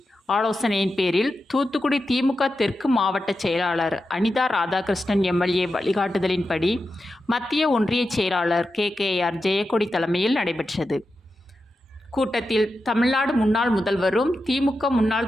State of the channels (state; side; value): normal; both; correlation 0.90